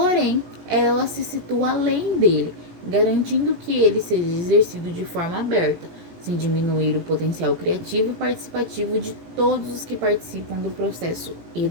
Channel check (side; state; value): left; late; 18 ms